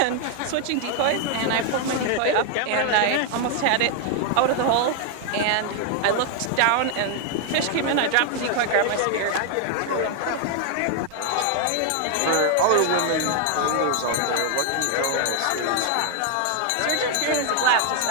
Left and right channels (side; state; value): both; different; correlation 0.00